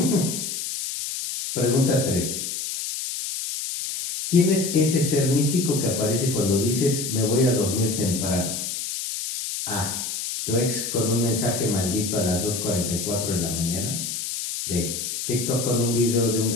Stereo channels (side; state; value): left; noise; hiss, 4 dB below the sound